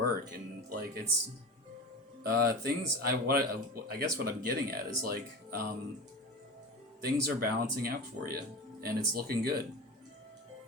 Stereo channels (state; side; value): normal; both; correlation 0.28